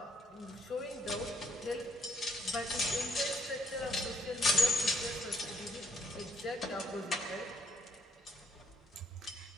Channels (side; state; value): both; normal; correlation 0.68